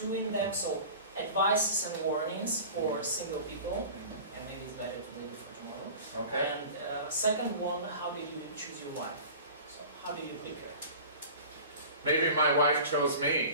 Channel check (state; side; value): inverted; both; correlation -0.39